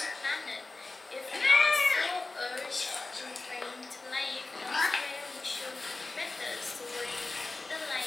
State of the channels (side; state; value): right; quieter; 3.4 dB